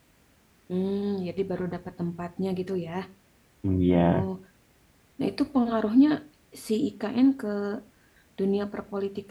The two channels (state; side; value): identical; both; correlation 1.00